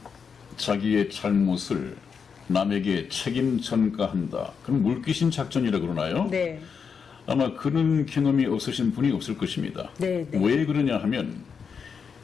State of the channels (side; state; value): right; quieter; 6.2 dB